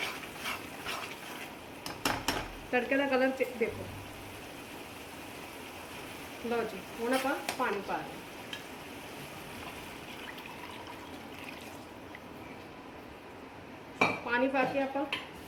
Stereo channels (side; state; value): both; identical; correlation 1.00